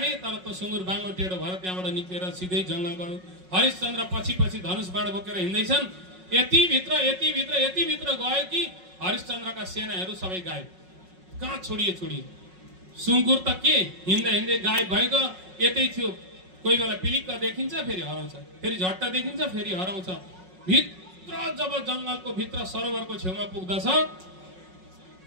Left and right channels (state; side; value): late; left; 5.4 ms